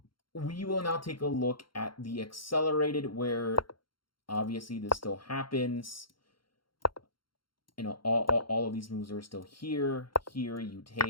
We will now take a look at the accelerated, where obviously this still happens. You know, all of these moves are still here. Here you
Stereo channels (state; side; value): late; right; 0.73 ms